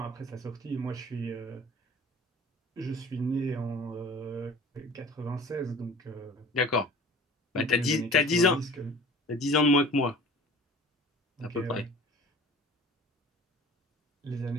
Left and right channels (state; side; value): normal; both; correlation 0.44